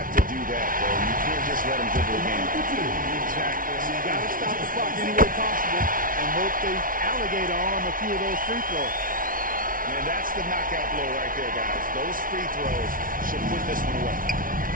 to do that, though. You can't just let him dribble again. Exactly. You got to stop the clock any way possible and hope the alligator arm a few of those free throws. And that's the knockout blow right there, guys. Those free throws should put this one away.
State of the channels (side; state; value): left; late; 0.40 ms